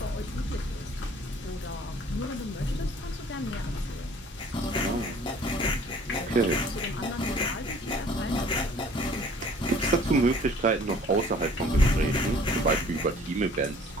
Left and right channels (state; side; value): normal; both; correlation 0.53